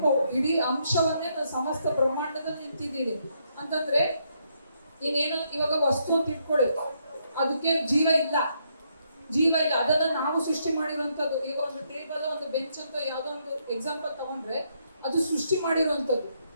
ಇಡೀ ಅಂಶವನ್ನೇ ನಾನು ಸಮಸ್ತ ಬ್ರಹ್ಮಾಂಡದಲ್ಲಿ ನಿಂತಿದ್ದೀನಿ ಅಂತಂದ್ರೆ, ನೀನೇನು ಇವಾಗ ವಸ್ತು ಅಂತ ಇಟ್ಕೊಳ್ಳಿ, ಅದಕ್ಕೆ ಜೀವ ಇಲ್ಲ, ಅದನ್ನ ನಾವು ಸೃಷ್ಟಿ ಮಾಡಿರುವಂಥದ್ದು. ಈಗ ಒಂದು ಟೇಬಲ್, ಒಂದು ಬೆಂಚ್ ಅಂತ ಯಾವುದೋ ಒಂದು ಎಕ್ಸಾಂಪಲ್ ತಗೊಂಡ್ರೆ ಅದು ಸೃಷ್ಟಿ ಮಾಡಿರುವಂಥದ್ದು,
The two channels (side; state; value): both; inverted; correlation -0.76